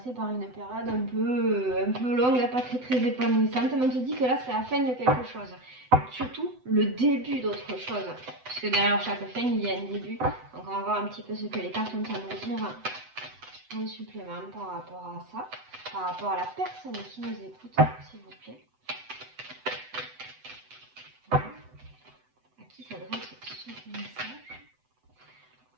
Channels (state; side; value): late; left; 7.9 ms